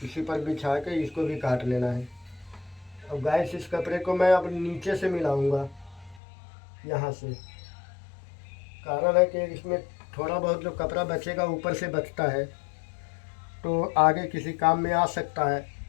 इसी पर बिछा के इसको भी काट लेना है। अब गाइस इस कपड़े को मैं अब नीचे से मिलाऊंगा, यहाँ से। कारण है कि इसमें थोड़ा बहुत जो कपड़ा बचेगा ऊपर से बचता है तो आगे किसी काम में आ सकता है,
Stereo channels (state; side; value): drops out; right; at 6.2 s